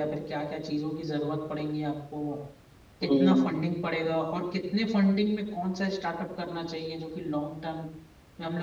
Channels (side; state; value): both; identical; correlation 1.00